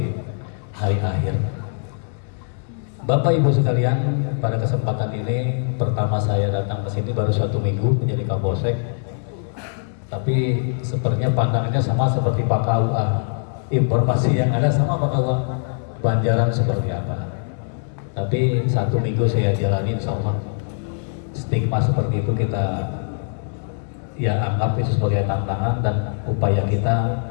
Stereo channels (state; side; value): silent; right; digital silence